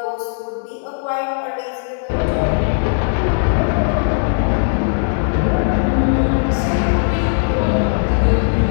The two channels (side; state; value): right; silent; digital silence